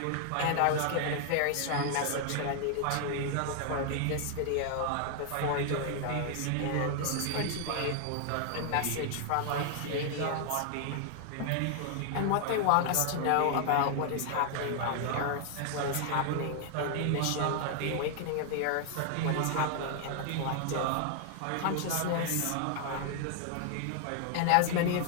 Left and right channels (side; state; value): both; different; correlation 0.00